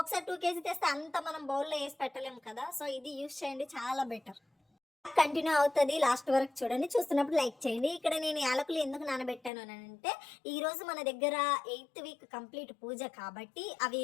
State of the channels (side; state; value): right; drops out; at 9.5 s